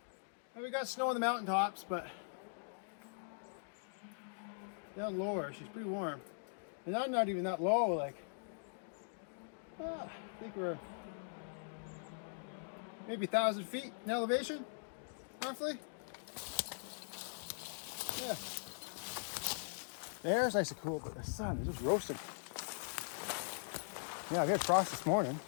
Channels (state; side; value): silent; right; digital silence